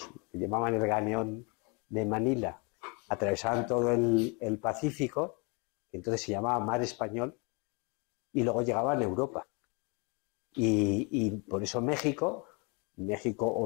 que llamaban el galeón de Manila, atravesaban todo el Pacífico, que entonces se llamaba Mar Español, y luego llegaban a Europa. Y por eso México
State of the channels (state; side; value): quieter; right; 32.0 dB